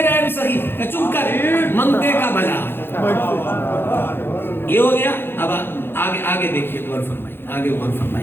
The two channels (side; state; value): right; late; 0.10 ms